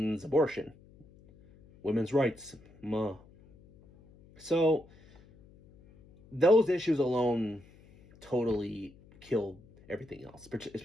abortion, women's rights. So those issues alone totally killed everything else,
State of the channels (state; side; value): noise; left; hum, 25 dB below the sound